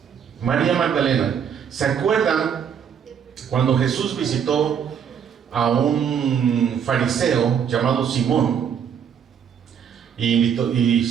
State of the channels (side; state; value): left; quieter; 7.9 dB